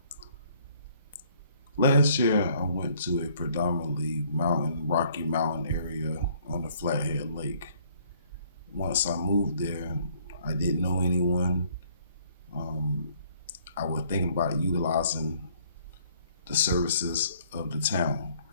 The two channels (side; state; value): both; inverted; correlation -0.62